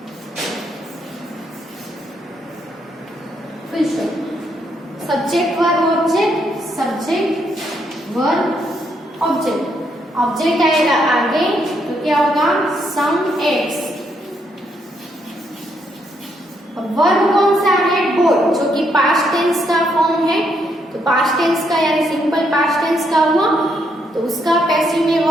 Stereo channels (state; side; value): normal; both; correlation 0.75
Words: Subject verb object, subject verb object. Object आएगा आगे तो क्या होगा, सम एग्स। वर्ब कौन सा है, बोट, जो कि पास्ट टेंस का फॉर्म है। तो पास्ट टेंस का यानी सिंपल पास्ट टेंस का हुआ, तो उसका पैसिव में